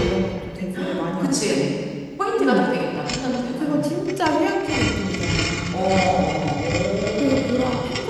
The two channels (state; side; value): identical; both; correlation 1.00